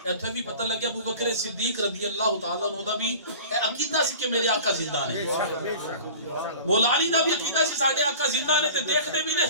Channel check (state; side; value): inverted; both; correlation -0.41